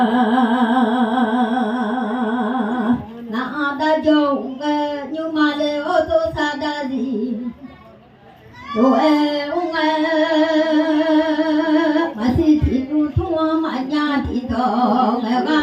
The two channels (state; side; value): identical; both; correlation 1.00